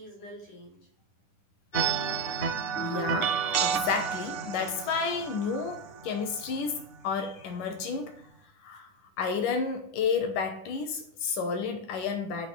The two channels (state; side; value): late; right; 10 ms